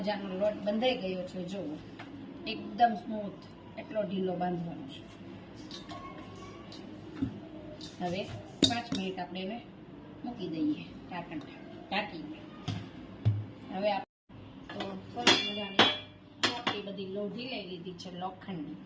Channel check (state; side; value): identical; both; correlation 1.00